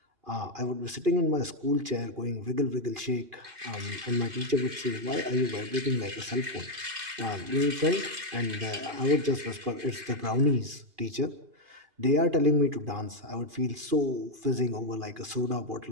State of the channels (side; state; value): left; late; 2.5 ms